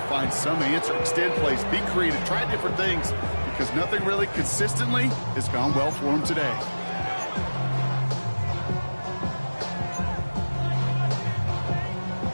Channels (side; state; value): both; inverted; correlation -1.00